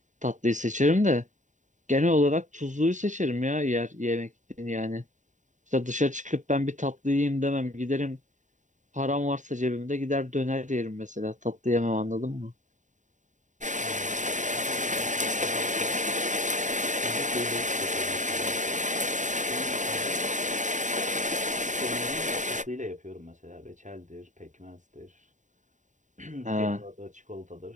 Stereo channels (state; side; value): late; left; 0.36 ms